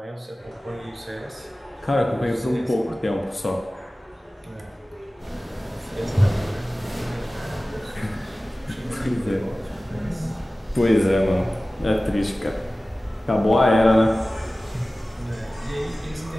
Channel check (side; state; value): both; normal; correlation 0.97